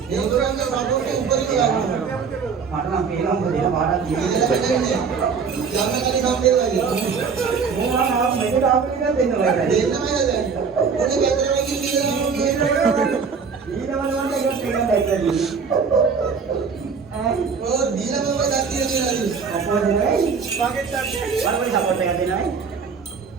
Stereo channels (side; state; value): left; quieter; 5.7 dB